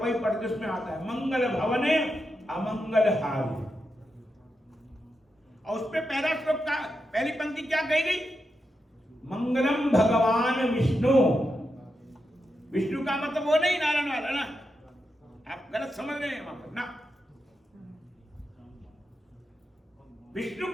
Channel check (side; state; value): both; normal; correlation 0.86